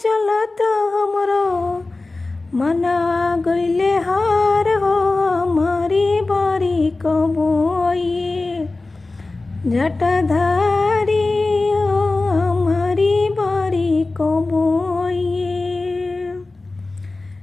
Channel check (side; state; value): right; quieter; 3.3 dB